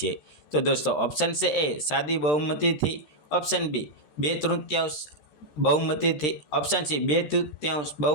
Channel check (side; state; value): right; late; 13 ms